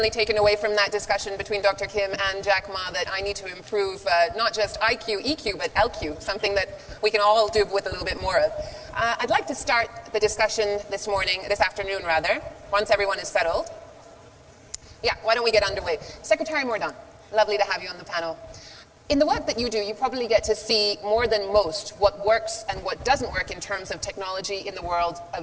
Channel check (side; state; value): both; identical; correlation 1.00